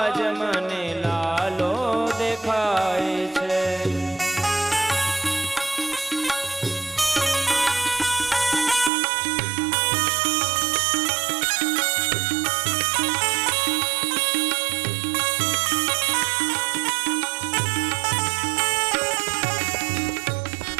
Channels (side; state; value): left; drops out; at 8.9 s